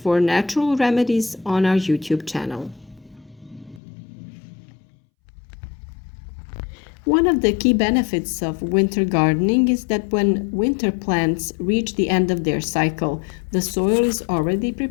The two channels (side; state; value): right; drops out; at 3.8 s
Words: natural remedies on our YouTube channel. One of the key benefits of winter gardening is that when winter plants reach the end of their cycle, the soil is already